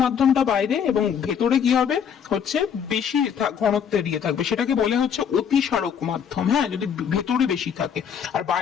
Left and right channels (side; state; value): right; quieter; 7.7 dB